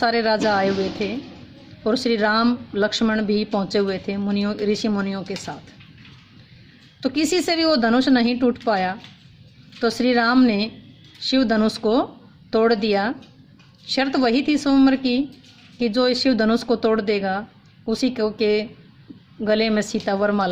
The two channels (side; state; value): both; identical; correlation 1.00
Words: राजा आए हुए थे और श्री राम लक्ष्मण भी पहुँचे हुए थे मुनियों ऋषि मुनियों के साथ। तो किसी से भी वो धनुष नहीं टूट पाया, तो श्री राम ने शिव धनुष को तोड़ दिया। शर्त वही थी स्वयंवर की कि जो इस शिव धनुष को तोड़ देगा उसी को के गले में सीता